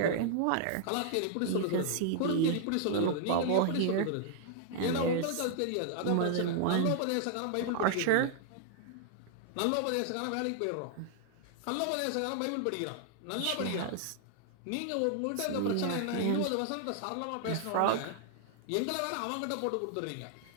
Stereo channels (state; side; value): different; both; correlation -0.01